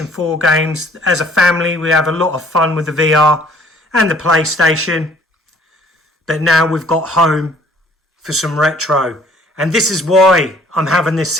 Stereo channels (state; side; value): normal; both; correlation 0.57